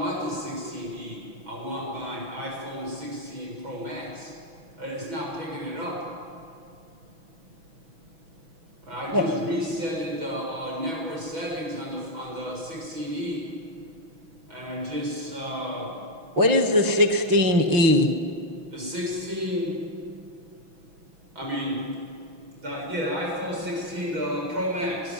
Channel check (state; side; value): late; left; 6.1 ms